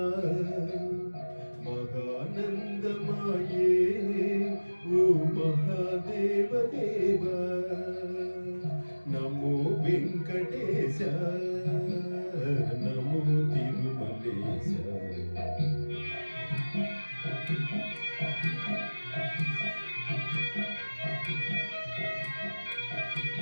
మహానందమాయే ఓ మహాదేవ దేవా నమో వెంకటేశ నమో తిరుమలేశ.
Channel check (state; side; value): inverted; both; correlation -1.00